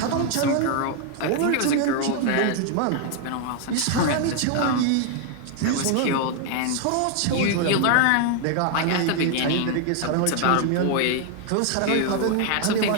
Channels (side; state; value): both; different; correlation 0.00